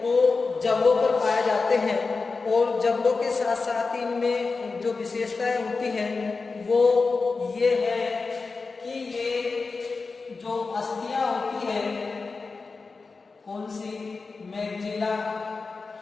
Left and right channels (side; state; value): right; quieter; 4.2 dB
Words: जबड़ों पर पाए जाते हैं। और जबड़ों के साथ साथ इनमें जो विशेषताएं होती हैं वो ये है कि ये जो अस्थियां होती है, कौन सी, मैक्सिला,